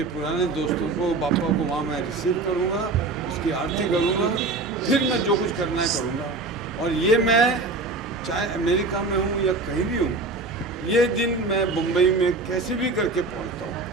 पुराने दोस्तों को, पापा को वहाँ मैं रिसीव करूँगा, उसकी आरती करूँगा, फिर मैं जो कुछ करना है करूँगा। और ये मैं चाहे अमेरिका में हूँ या कहीं भी हूँ, ये दिन मैं मुंबई में कैसे भी करके पहुँचता हूँ।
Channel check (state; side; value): quieter; left; 3.5 dB